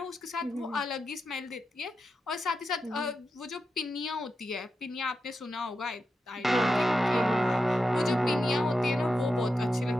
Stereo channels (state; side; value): normal; both; correlation 0.88